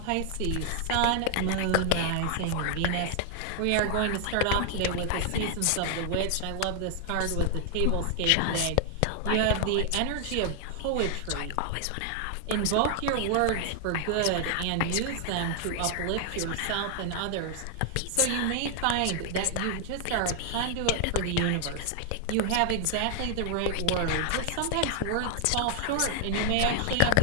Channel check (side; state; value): both; different; correlation 0.00